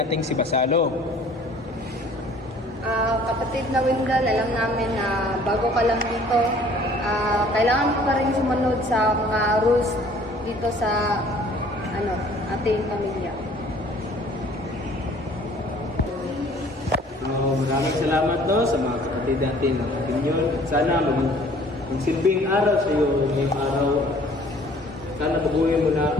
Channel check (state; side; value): normal; both; correlation 0.54